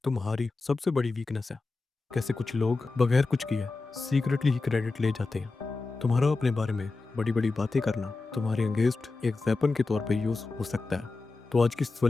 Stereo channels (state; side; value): quieter; right; 3.7 dB